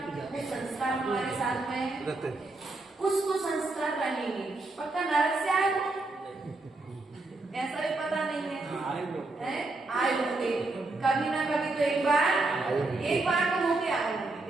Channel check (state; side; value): quieter; left; 3.2 dB